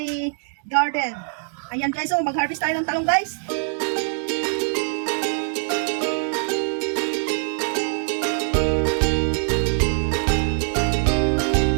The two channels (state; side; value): silent; left; digital silence